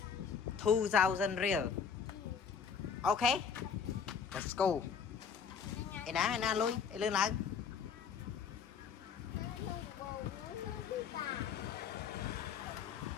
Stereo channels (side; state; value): right; quieter; 6.7 dB